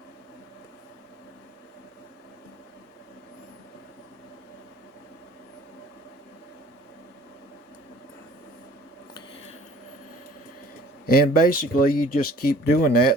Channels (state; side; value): normal; both; correlation 0.51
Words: And basically you just keep doing